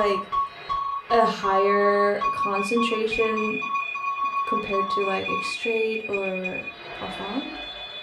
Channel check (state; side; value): identical; both; correlation 1.00